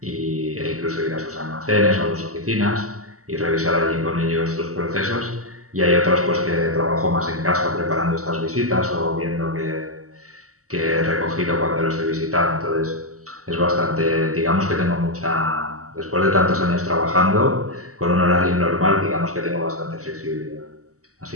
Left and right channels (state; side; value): late; left; 0.65 ms